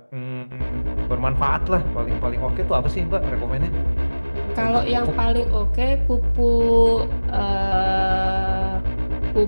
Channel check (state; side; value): inverted; both; correlation -1.00